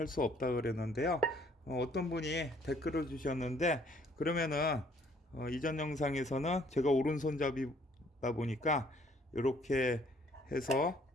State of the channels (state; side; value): normal; both; correlation 0.62